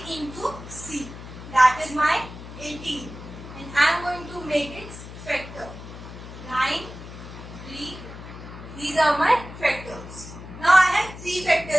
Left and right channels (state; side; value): noise; left; hum, 13 dB below the sound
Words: into c. That is my 18. And I am going to make its factor. 9, 3. These are my factors. Now I have 3